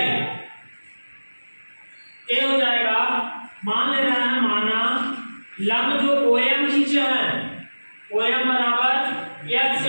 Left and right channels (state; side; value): inverted; both; correlation -1.00